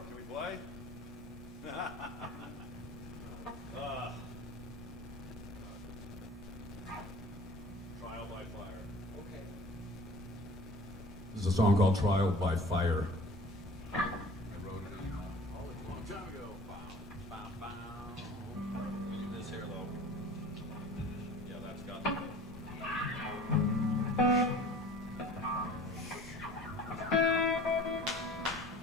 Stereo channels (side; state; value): both; normal; correlation 0.45